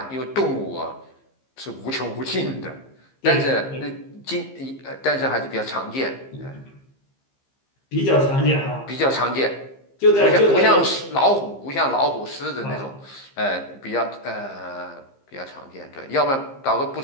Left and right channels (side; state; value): right; late; 15 ms